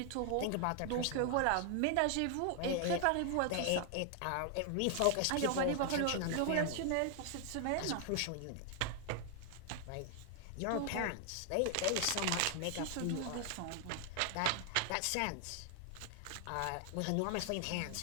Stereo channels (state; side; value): different; both; correlation 0.00